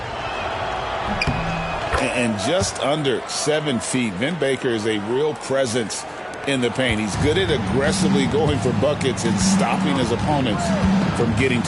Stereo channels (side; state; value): both; identical; correlation 1.00